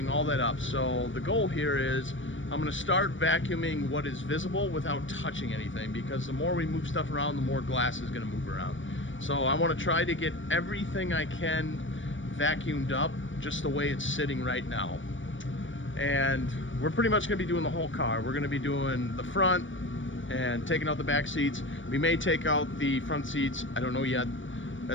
all that up. So the goal here is I'm going to start vacuuming what is visible without touching anything, because the more we move stuff around, the more glass is going to move around. So I want to try to get everything I can vacuumed up just the way it's sitting right now. And we're pretty much going to be doing the whole car. We're going to be doing the front and taking out the back seats. We may take out the front seats. I don't know yet.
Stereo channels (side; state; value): right; late; 0.56 ms